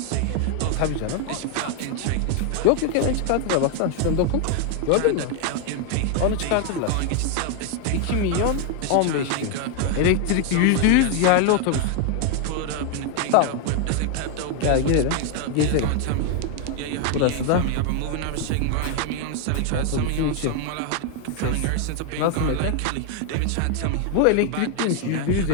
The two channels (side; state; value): both; different; correlation 0.00